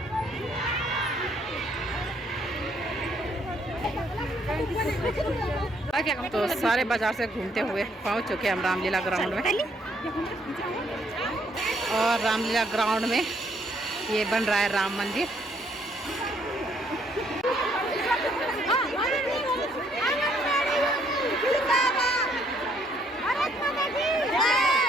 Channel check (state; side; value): normal; both; correlation 0.68